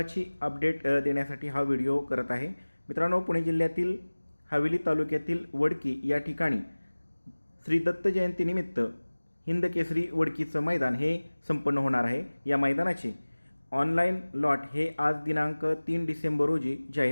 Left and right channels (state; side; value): inverted; both; correlation -1.00